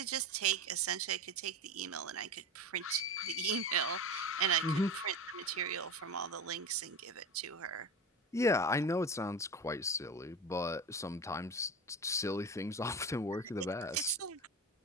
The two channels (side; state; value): both; normal; correlation 0.26